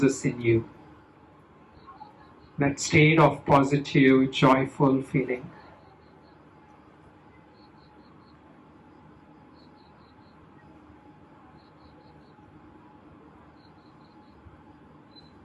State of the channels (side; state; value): both; identical; correlation 1.00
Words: in you, that state of positive, joyful feeling.